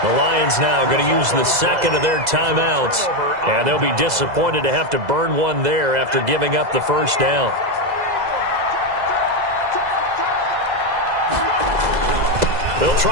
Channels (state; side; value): late; left; 2.0 ms